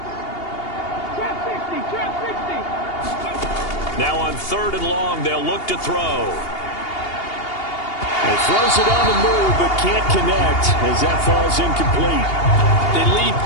Now on 3rd and long, they'll look to throw. He throws it on the move, but can't connect as that falls incomplete. They lead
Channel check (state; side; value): late; right; 2.8 ms